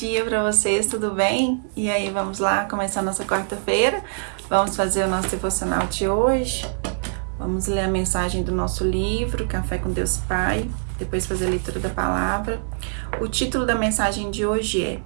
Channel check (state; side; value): silent; left; 57 dB below the other